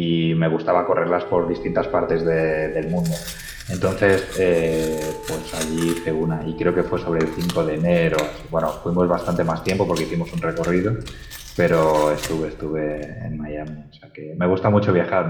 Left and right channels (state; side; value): identical; both; correlation 1.00